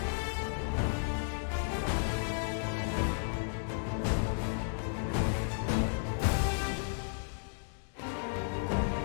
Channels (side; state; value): right; silent; digital silence